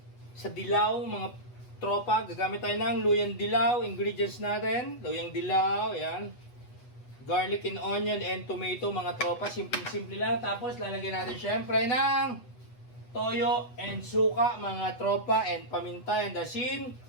sa dilaw mga tropa. Gagamit tayo ng luyang dilaw. Ingredients natin, luyang dilaw, yan. Garlic and onion and tomato mga tropa. Simple-simple lang. Tapos lalagyan natin syempre ng toyo and suka mga tropa and paminta and asin.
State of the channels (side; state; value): right; late; 8.1 ms